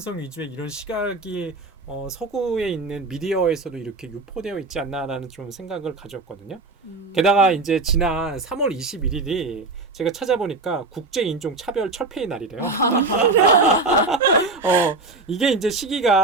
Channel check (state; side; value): quieter; left; 3.4 dB